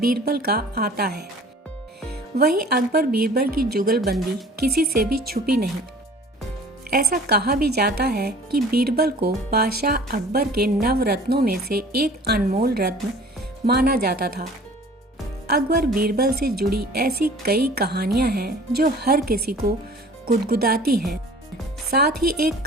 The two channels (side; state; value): both; normal; correlation 0.47